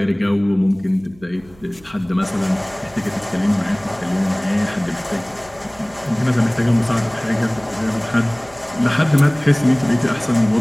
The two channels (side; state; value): right; noise; hum, 25 dB below the sound